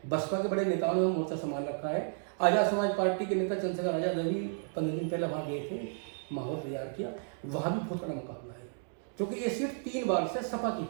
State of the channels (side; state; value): left; silent; digital silence